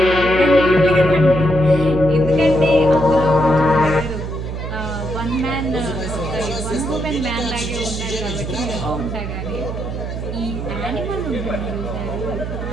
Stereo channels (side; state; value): right; noise; hum, 5 dB below the sound